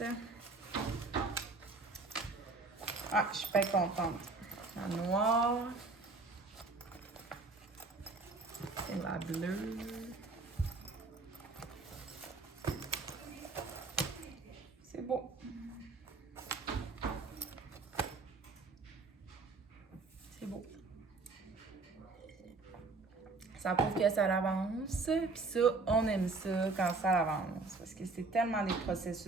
Ah, je suis pas contente. La noire. Et la bleue. C'est beau. C'est beau. Ça prouve que ça avance. Puis ça, on aime ça quand ça avance. Parce que c'est tellement des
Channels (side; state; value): left; quieter; 3.7 dB